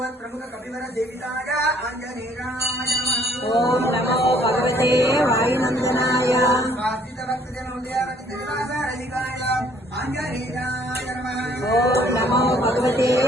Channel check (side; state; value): both; normal; correlation 0.61